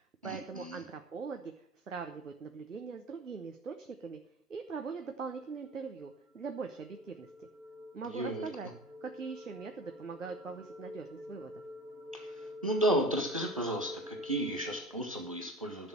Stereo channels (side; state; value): both; normal; correlation 0.38